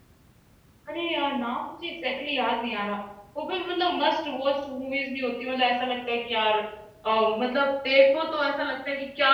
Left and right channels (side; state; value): both; identical; correlation 1.00